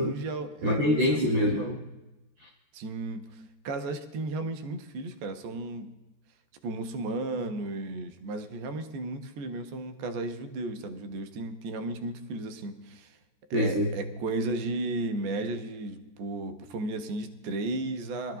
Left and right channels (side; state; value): left; late; 14 ms